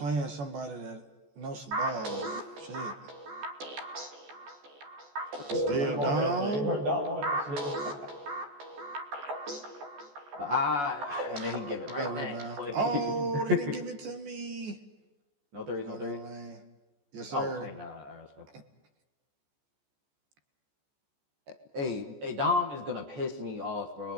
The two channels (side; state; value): left; late; 14 ms